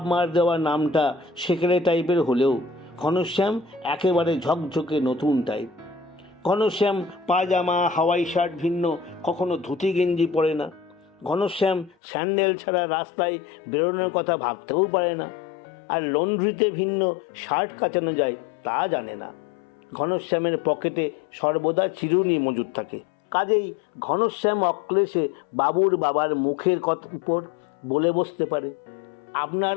মার দেওয়া নামটা সেকেলে টাইপের হলেও ঘনশ্যাম একেবারে ঝকঝকে নতুন টাইপ। ঘনশ্যাম পায়জামা হাওয়াই শার্ট ভিন্ন কখনো ধুতি গেঞ্জি পরে না। ঘনশ্যাম স্যান্ডেল ছাড়া রাস্তায় বেরোনোর কথা ভাবতেও পারে না। আর লন্ড্রিতে ভিন্ন শার্ট কাচানো যায় তা জানে না। ঘনশ্যামের পকেটে সর্বদা চিরুনি মজুদ থাকে। কাজেই ঘনশ্যাম অক্লেশে বাবুর বাবার মুখের উপর বলে বসতে পারে, আপনার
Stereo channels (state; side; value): drops out; right; at 12.0 s